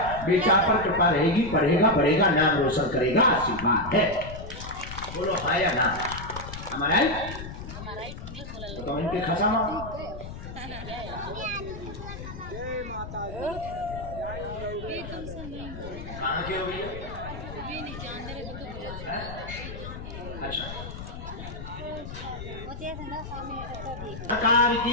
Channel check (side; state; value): left; noise; rumble, 10 dB below the sound